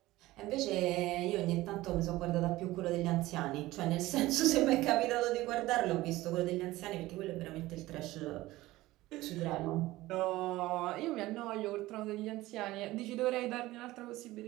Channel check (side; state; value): left; quieter; 17.8 dB